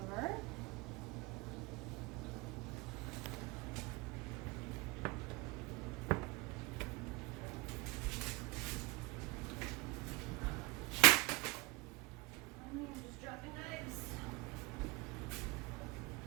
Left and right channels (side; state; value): left; quieter; 25.1 dB